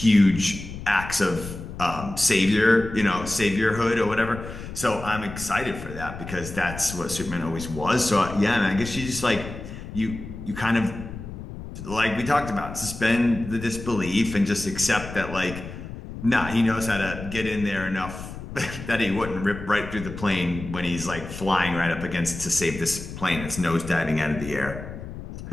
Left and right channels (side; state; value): left; noise; rumble, 10 dB below the sound